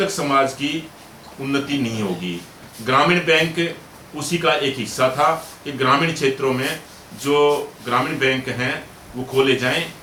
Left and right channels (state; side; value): identical; both; correlation 1.00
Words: समाज की उन्नति नहीं होगी। ग्रामीण बैंक उसी का एक हिस्सा था कि ग्रामीण क्षेत्रों में जो ग्रामीण बैंक हैं वो खोले जाएं,